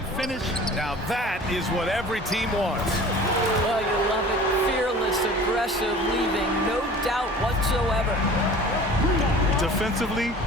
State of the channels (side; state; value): both; normal; correlation 0.43